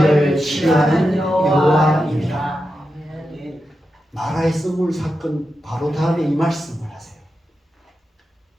치료하는 여호와입니다. 마라의 썸물 사건 바로 다음에 이 말씀을 하세요.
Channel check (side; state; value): both; normal; correlation 0.89